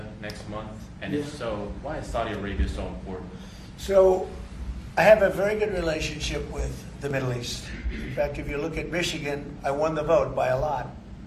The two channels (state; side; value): identical; both; correlation 1.00